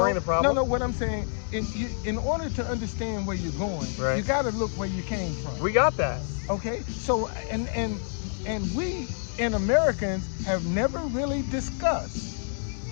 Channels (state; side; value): silent; right; 60 dB below the other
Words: the problem? No, what I'm saying, in order to understand where you're going, you got to look where you came from. We got that. Okay, so and we in Americans have never really discussed